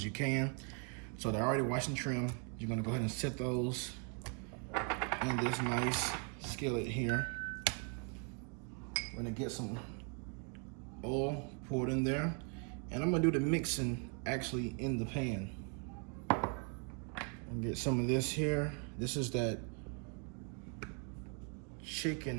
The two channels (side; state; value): left; quieter; 39.4 dB